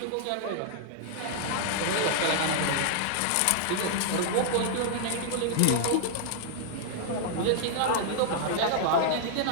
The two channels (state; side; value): different; both; correlation -0.01